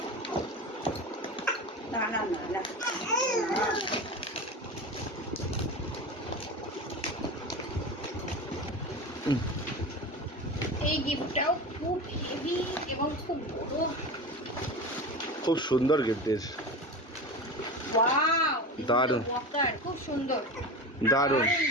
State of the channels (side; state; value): both; normal; correlation 0.27